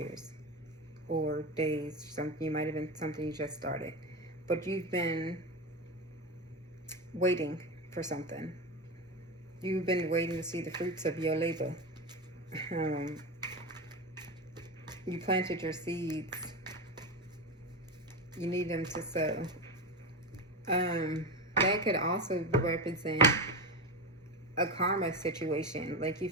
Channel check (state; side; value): normal; both; correlation 0.19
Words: or days. Something, you might have been something you just started, but you've been waiting for something. You've been waiting to see the fruits of your labor. You planted your seeds. You need them to sow. That could also represent a karma situation. Like, you